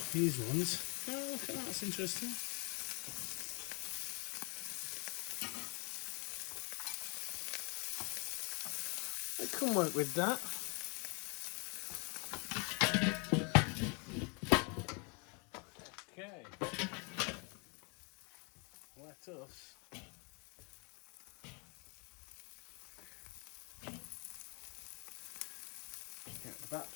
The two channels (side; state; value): right; quieter; 33.3 dB